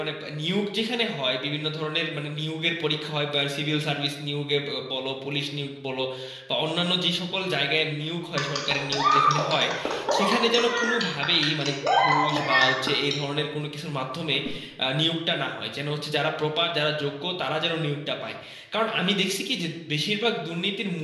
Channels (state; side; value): identical; both; correlation 1.00